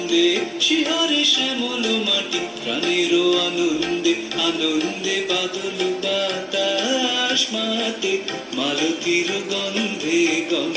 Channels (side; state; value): both; identical; correlation 1.00